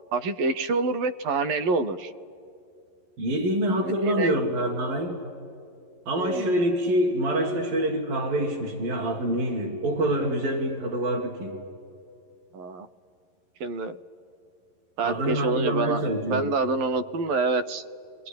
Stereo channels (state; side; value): late; left; 11 ms